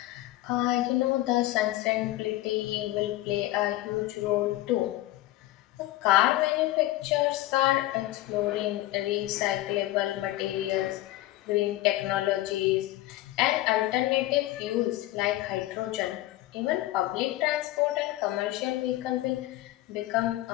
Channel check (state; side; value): quieter; right; 16.3 dB